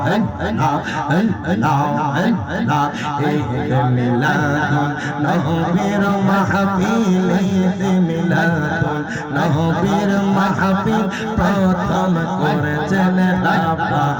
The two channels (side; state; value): both; identical; correlation 1.00